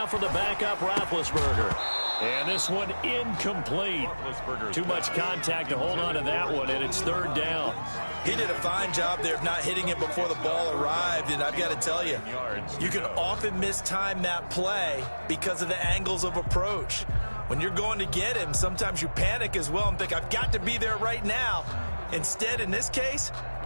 for the backup Roethlisberger. And this one incomplete. Too much contact to hold on to that one, and it's 3rd down. He did a fine job there of not hitting it before the ball arrived, and I've got to tell you, you can often mistime that play because of the angles of approach. When you're going to get him, sometimes you panic as well and think, I've got to be there right now. Instead, in this case,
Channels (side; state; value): both; inverted; correlation -1.00